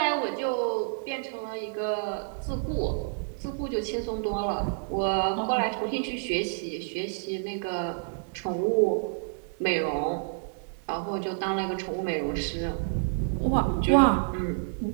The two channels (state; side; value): silent; left; digital silence